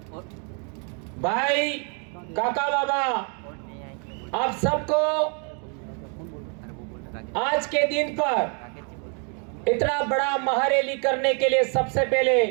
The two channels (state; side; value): quieter; left; 39.1 dB